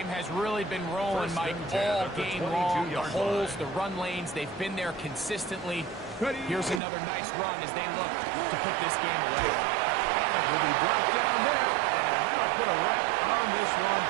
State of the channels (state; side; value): drops out; left; at 6.8 s